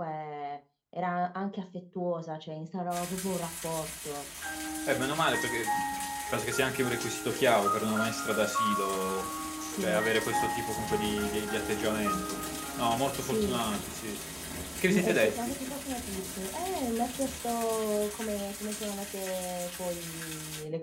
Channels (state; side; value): identical; both; correlation 1.00